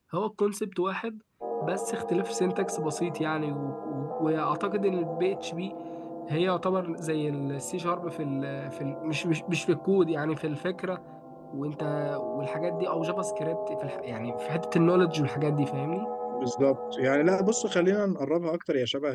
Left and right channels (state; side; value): identical; both; correlation 1.00